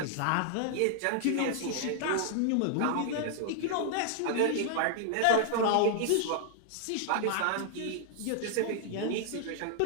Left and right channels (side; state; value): both; different; correlation 0.00